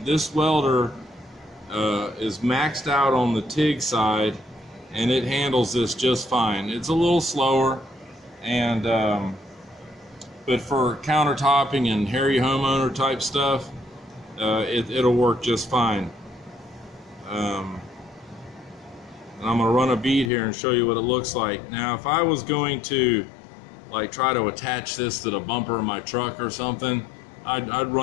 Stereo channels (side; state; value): right; drops out; at 20.3 s